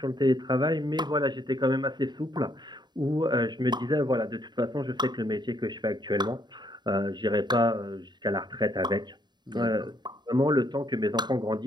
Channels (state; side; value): late; left; 0.21 ms